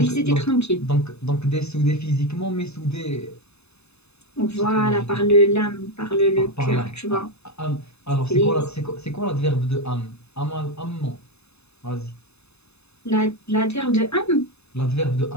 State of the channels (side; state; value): right; late; 0.80 ms